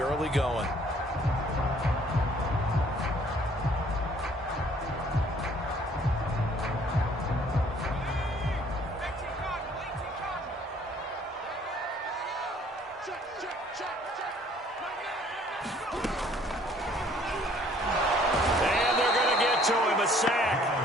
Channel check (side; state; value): both; normal; correlation 0.58